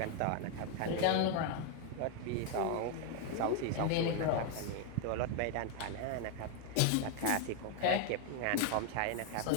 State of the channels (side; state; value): both; different; correlation 0.01